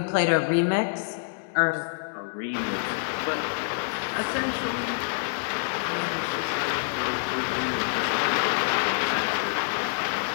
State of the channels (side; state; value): right; silent; digital silence